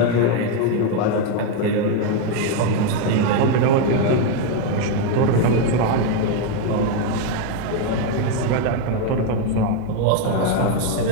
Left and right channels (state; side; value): different; both; correlation 0.01